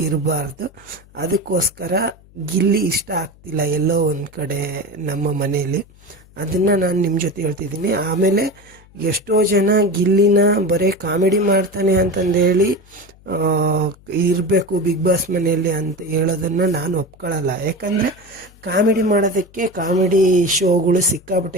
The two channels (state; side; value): noise; left; hum, 26 dB below the sound